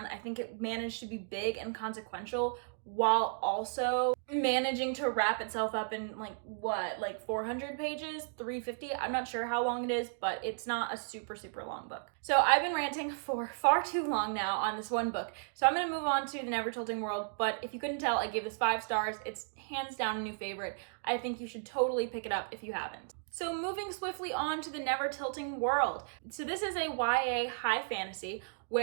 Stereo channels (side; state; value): left; silent; digital silence